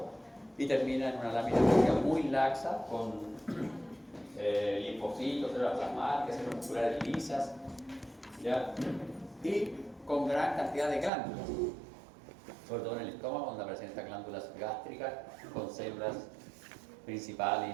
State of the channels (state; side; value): drops out; left; at 11.1 s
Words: y termina en una lámina propia muy laxa con linfocitos, células plasmáticas, células musculares lisas, ¿ya? Y con gran cantidad de glándulas, sobre todo en el estómago, donde aparecen estas glándulas gástricas con células